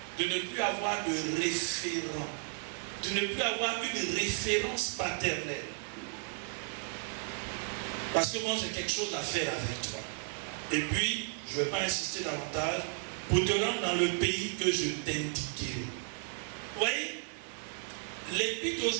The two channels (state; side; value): silent; left; 55 dB below the other